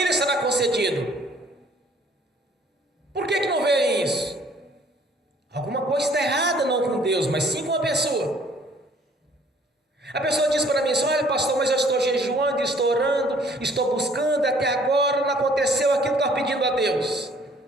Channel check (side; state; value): both; normal; correlation 0.58